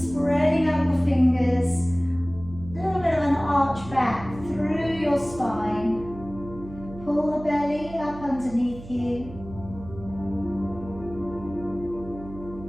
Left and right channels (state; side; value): noise; right; hum, 15 dB below the sound